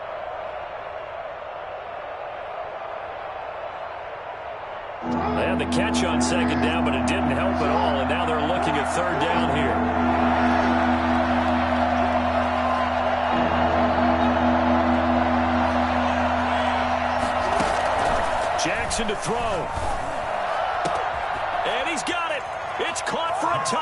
They had the catch on 2nd down, but it didn't help at all, and now they're looking at 3rd down here. Jackson to throw. And he's got it. It's caught for a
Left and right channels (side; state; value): both; identical; correlation 1.00